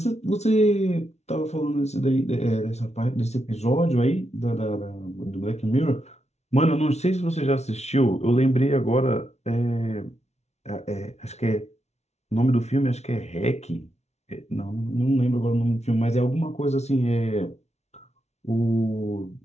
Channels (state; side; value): late; right; 0.32 ms